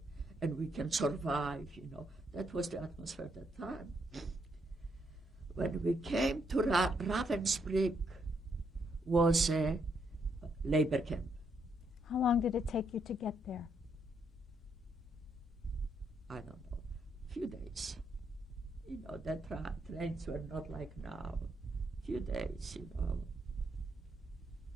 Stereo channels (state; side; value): normal; both; correlation 0.76